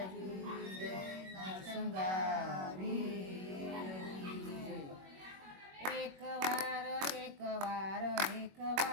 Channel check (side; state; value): left; late; 21 ms